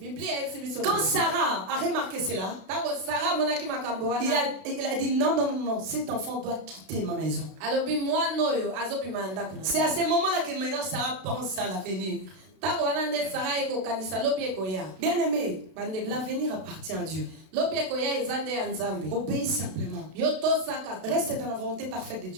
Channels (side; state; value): left; late; 32 ms